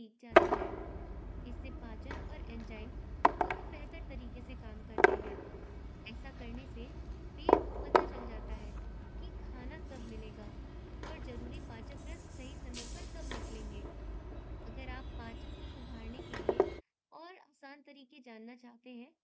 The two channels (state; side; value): identical; both; correlation 1.00